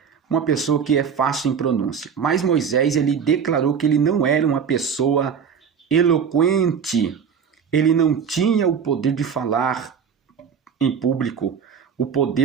uma pessoa que é fácil em pronúncia. Mas Moisés ele declarou que ele não era uma pessoa eloquente. Ele não tinha o poder de falar em público, o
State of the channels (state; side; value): quieter; left; 7.0 dB